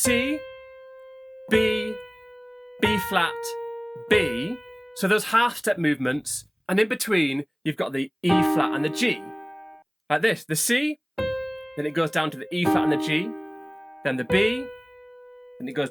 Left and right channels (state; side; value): identical; both; correlation 1.00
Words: B, B flat, B. So those half step movements, And in between, you've got the E flat and the G. Like this, the C, then it goes down to the E flat and the G, then the B, then it goes